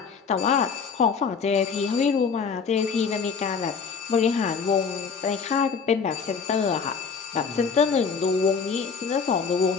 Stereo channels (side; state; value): right; quieter; 5.8 dB